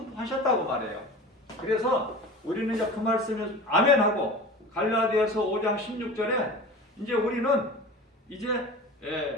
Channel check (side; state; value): both; normal; correlation 0.36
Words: 말해요. 그래서 우리는 이제 그 말씀을 아멘하고 갈라디아서 5장 16절에 이제 우리는 이제